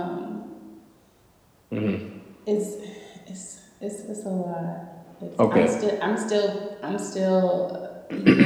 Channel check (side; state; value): both; identical; correlation 1.00